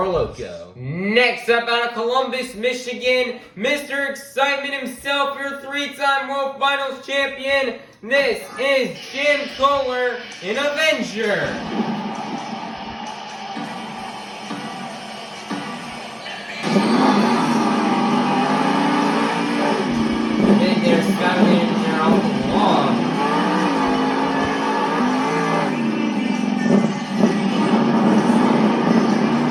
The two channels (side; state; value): both; identical; correlation 1.00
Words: Loco. Next up, out of Columbus, Michigan, Mr. Excitement himself, your three-time World Finals champion. This is Jim Kohler, an Avenger. Big there, Skylander there off the wall.